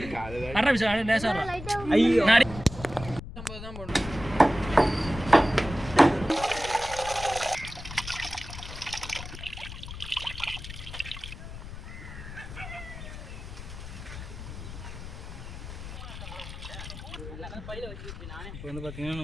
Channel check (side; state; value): left; noise; rumble, 11 dB below the sound